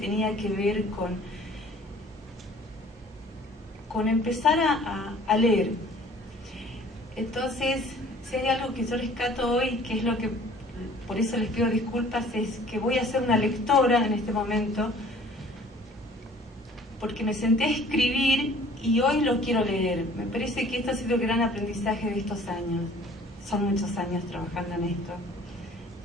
que ver con empezar a leer. Entonces, si hay algo que yo rescato hoy, que es lo que, por eso les pido disculpas, es que voy a ser una lectora en este momento, porque me senté a escribir y hoy lo quiero leer. Me parece que esto ha sido el gran aprendizaje de estos años. Son muchos años trabajando en esto.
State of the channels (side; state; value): both; normal; correlation 0.52